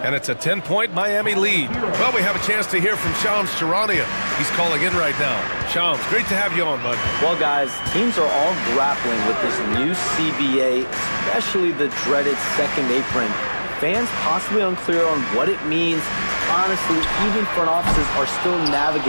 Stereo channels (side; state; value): both; inverted; correlation -1.00